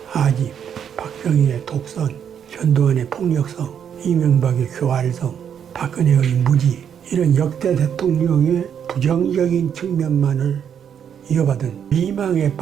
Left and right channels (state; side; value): quieter; left; 8.3 dB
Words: 아집, 박정희의 독선, 전두환의 폭력성, 이명박의 교활성, 박근혜의 무지, 이런 역대 대통령의 부정적인 측면만을 이어받은 미망에